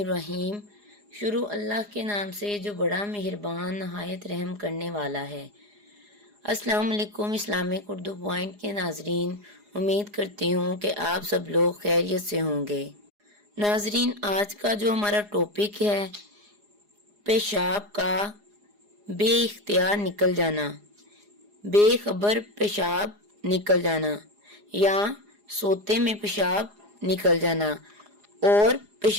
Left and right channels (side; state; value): left; late; 4.8 ms